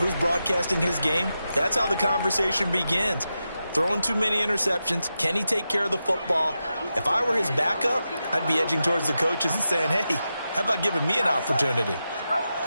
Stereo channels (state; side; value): inverted; both; correlation -0.89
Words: broadcasting his game, that's how the conversation begins. Throwing too many interceptions. Can he take care of the football? If I were his backup, I'd be edging towards the coaches and saying, hey, how about giving me an opportunity?